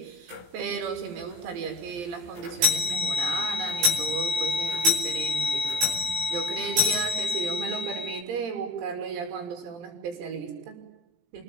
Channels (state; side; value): late; left; 17 ms